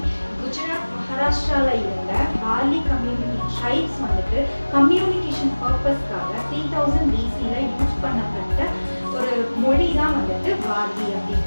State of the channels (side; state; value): both; inverted; correlation -1.00